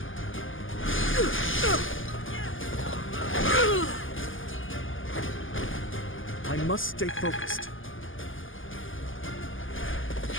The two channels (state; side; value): late; right; 0.58 ms